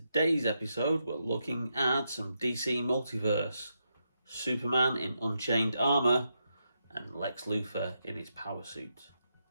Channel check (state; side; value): inverted; both; correlation -0.83